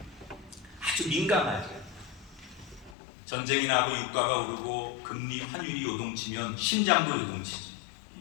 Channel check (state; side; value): drops out; right; at 3.0 s